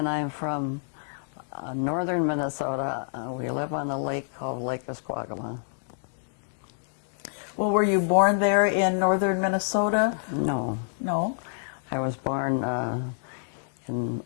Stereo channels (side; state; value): right; silent; digital silence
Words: I'm from northern Minnesota. We live on a lake called Lake Esquagama. Well, were you born there in northern Minnesota? No. No? I was born on